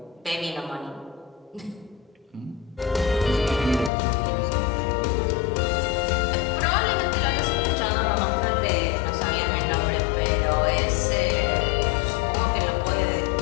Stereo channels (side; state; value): right; drops out; at 3.9 s